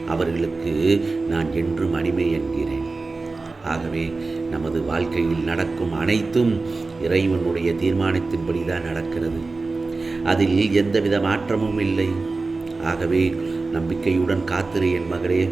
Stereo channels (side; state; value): left; quieter; 3.7 dB